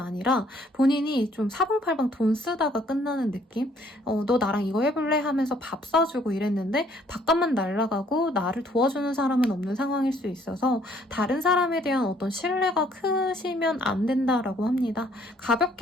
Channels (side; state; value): both; normal; correlation 0.63